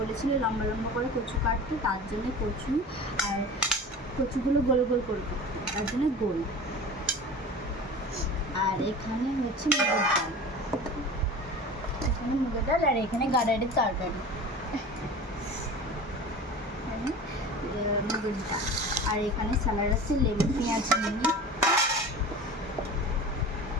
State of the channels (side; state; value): both; normal; correlation 0.36